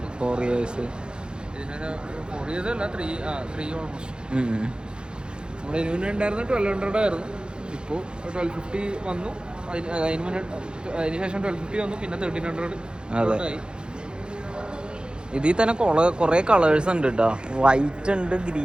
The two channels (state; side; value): late; left; 0.049 ms